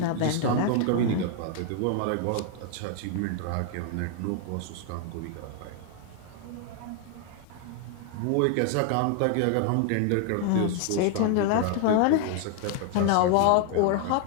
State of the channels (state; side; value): different; both; correlation 0.00